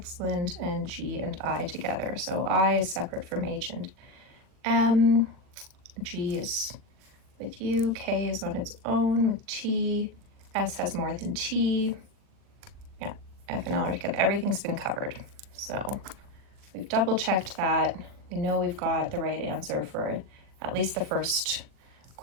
and G and I together. So I is separate from H and M. G is with U. K is on its own with T. S has more than T. Yeah, F and L are together. Everything's been covered. So we've double checked that. We know we've got the right answer for at least the first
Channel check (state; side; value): late; left; 40 ms